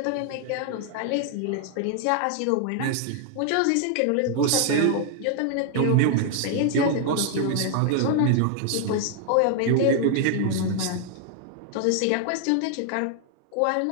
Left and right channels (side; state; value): both; different; correlation 0.00